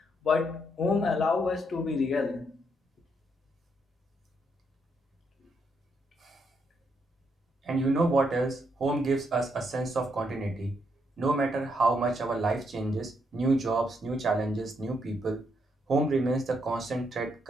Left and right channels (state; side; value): normal; both; correlation 0.76